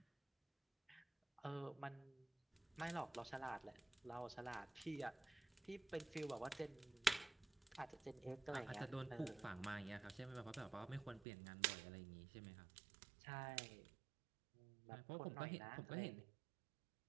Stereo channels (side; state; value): left; drops out; at 11.2 s